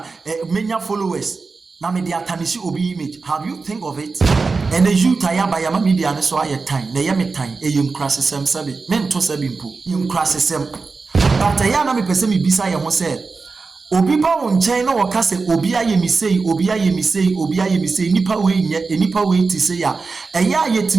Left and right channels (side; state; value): left; quieter; 4.3 dB